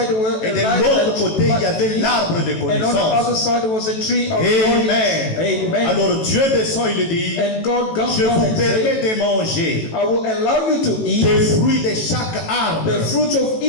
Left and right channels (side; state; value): right; late; 18 ms